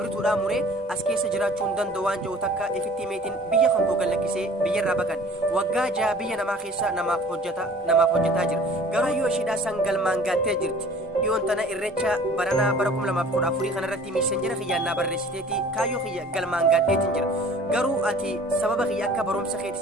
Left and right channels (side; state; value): both; normal; correlation 0.48